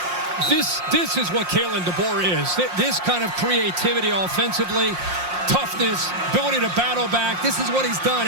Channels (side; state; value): left; late; 5.6 ms